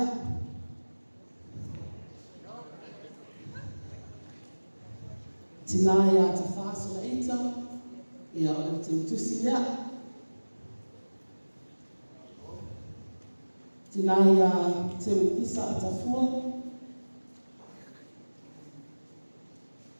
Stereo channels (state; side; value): inverted; both; correlation -1.00